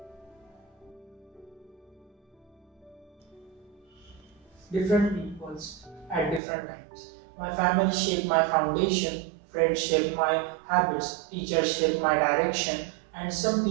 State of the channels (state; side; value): drops out; left; at 6.4 s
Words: Different peoples at different times. My family shaped my foundation, friends shaped my habits, teachers shaped my direction, and some